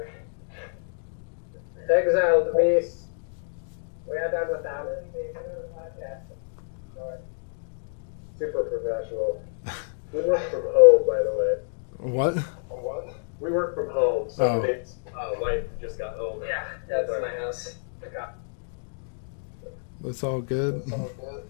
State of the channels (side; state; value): right; silent; digital silence